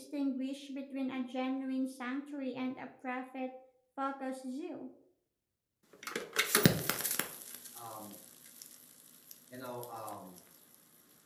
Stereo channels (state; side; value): identical; both; correlation 1.00